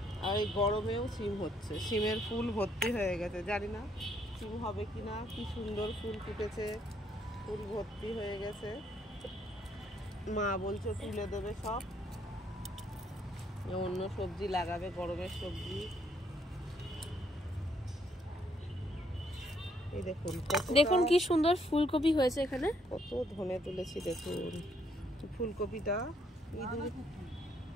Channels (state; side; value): normal; both; correlation 0.70